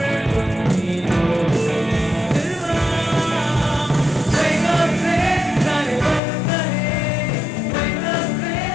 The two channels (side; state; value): right; drops out; at 6.2 s